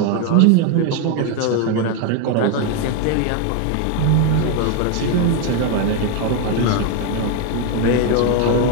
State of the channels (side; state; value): both; different; correlation 0.01